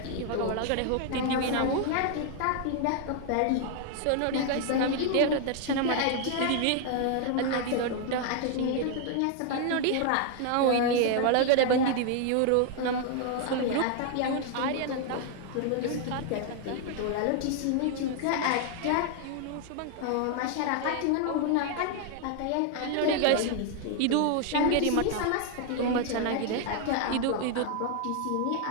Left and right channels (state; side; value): different; both; correlation 0.00